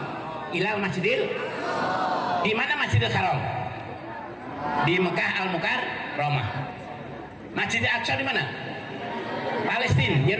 ilal masjidil. Di mana Masjidil Haram? Di Mekah Al-Mukarramah. Masjidil Aqsa di mana? Palestina,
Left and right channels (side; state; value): both; identical; correlation 1.00